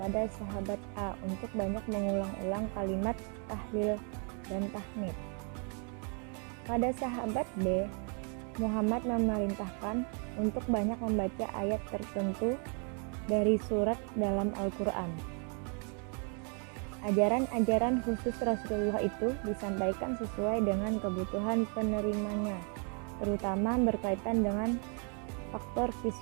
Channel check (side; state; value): left; quieter; 39.4 dB